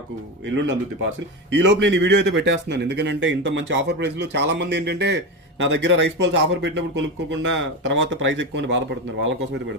ఎల్లుండి అందుద్ది పార్సిల్. ఈ లోపు నేను ఈ వీడియో అయితే పెట్టేస్తున్నాను, ఎందుకంటే ఇంత మంచి ఆఫర్ ప్రైస్ లో చాలా మంది ఏంటంటే నా దగ్గర రైస్ పర్ల్స్ ఆఫర్ పెట్టినప్పుడు కొనుక్కోకుండా తర్వాత ప్రైస్ ఎక్కువ బాధపడుతున్నారు. వాళ్ళ కోసం అయితే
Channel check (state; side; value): normal; both; correlation 0.19